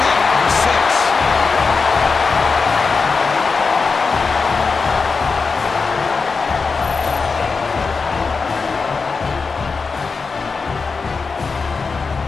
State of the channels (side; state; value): right; quieter; 4.7 dB